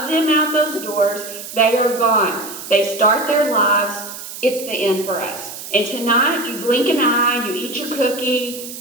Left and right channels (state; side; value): noise; right; hiss, 11 dB below the sound